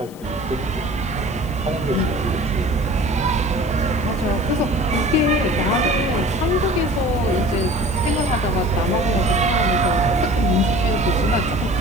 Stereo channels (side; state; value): left; noise; hiss, 24 dB below the sound